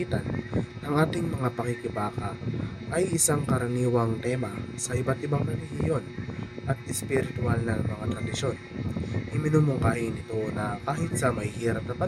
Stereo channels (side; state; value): both; identical; correlation 1.00